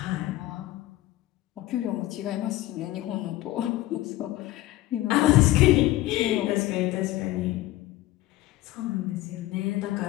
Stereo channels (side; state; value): right; quieter; 16.5 dB